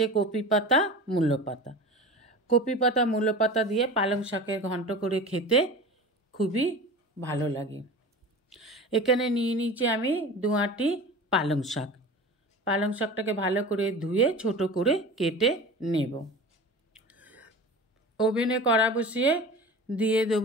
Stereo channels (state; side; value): normal; both; correlation 0.34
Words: কপি পাতা মূলো পাতা। কপি পাতা মূলো পাতা দিয়ে পালং শাকের ঘন্ট করে খেতে খুবই ভালো লাগে। এখানে নিয়ে নিয়েছি আমি 2 আঁটি পালং শাক। পালং শাকটাকে ভালো করে ধুয়ে ছোট করে কেটে নেব। ওভেনে কড়া বসিয়ে দিয়ে